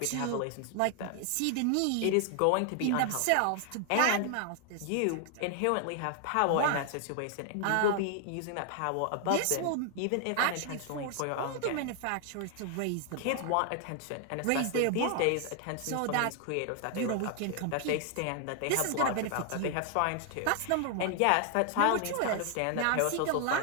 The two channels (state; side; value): different; both; correlation 0.00